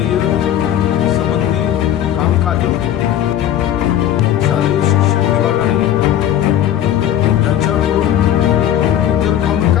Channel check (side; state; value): right; quieter; 11.2 dB